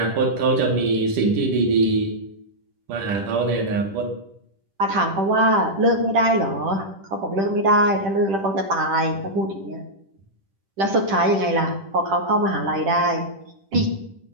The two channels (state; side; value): late; left; 10 ms